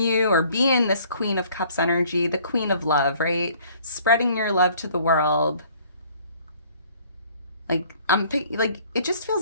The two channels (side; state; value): both; inverted; correlation -0.57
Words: or be in this Queen of Cups energy, the Queen of Love, right? Spreading your love to the world. Like, it just